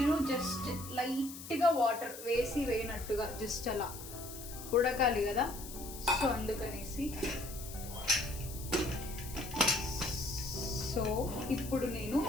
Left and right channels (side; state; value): left; noise; hiss, 12 dB below the sound